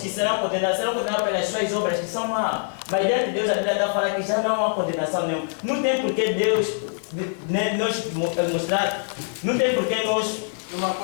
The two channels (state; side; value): silent; right; digital silence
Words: serão condenados pelas suas obras que são más. Mas diante de Deus, a Bíblia está falando que já não há condenação nenhuma. Não tem por que Deus nos mostrar. Não tem por que nós.